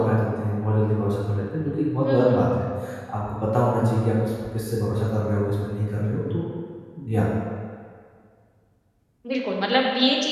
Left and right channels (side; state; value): both; identical; correlation 1.00